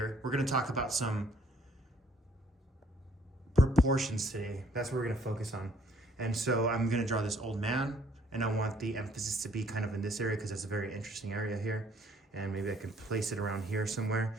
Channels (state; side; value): normal; both; correlation 0.61